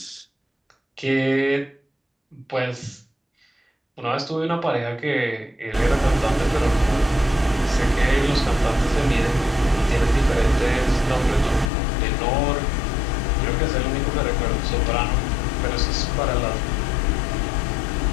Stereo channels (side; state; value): right; drops out; at 11.7 s